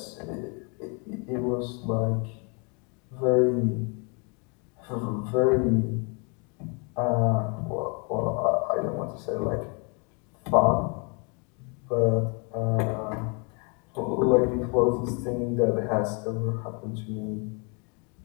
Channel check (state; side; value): quieter; right; 34.9 dB